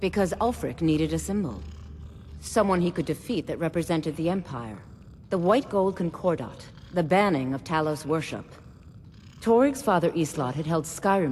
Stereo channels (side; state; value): both; identical; correlation 1.00